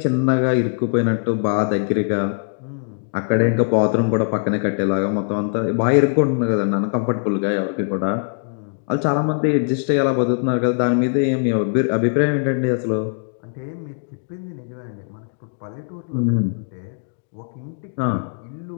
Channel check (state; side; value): silent; right; digital silence